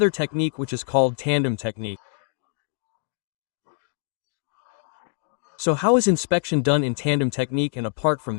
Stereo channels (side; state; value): right; silent; 62 dB below the other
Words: technique which is called tandem technique. So how is inspection done in tandem technique, and apart from